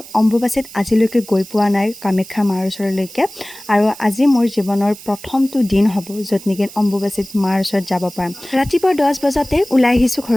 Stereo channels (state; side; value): noise; right; hiss, 17 dB below the sound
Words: অম্বুবাচীত আজিলৈকে গৈ পোৱা নাই কামাখ্যা মাৰ ওচৰলৈকে, আৰু আজি মোৰ জীৱনৰ প্ৰথমটো দিন হ'ব য'ত নেকি অম্বুবাচীত মাৰ ওচৰত যাব পাৰিম। ৰাতিপুৱা 10 বজাতে ওলাই আহিছোঁ